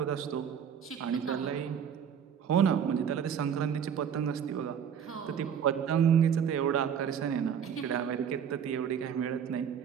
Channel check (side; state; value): left; quieter; 8.0 dB